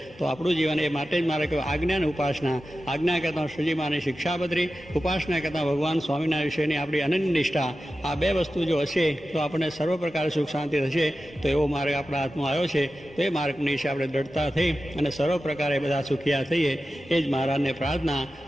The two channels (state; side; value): normal; both; correlation 0.93